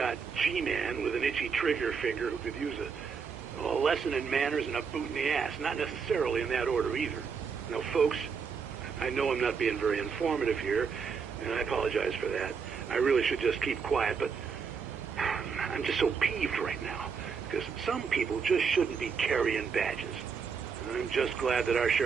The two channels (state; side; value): quieter; left; 5.9 dB